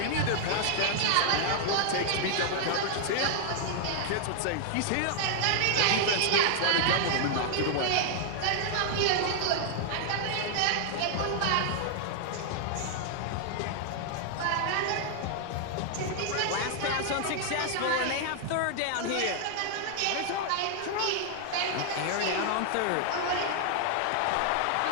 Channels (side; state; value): both; different; correlation 0.00